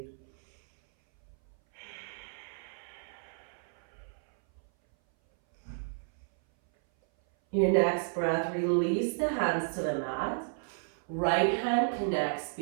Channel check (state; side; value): silent; left; 56 dB below the other